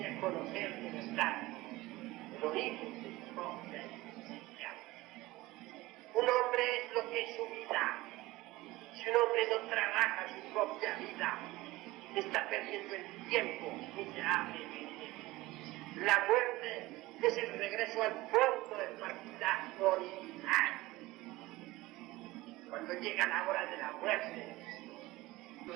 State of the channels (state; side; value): quieter; left; 19.3 dB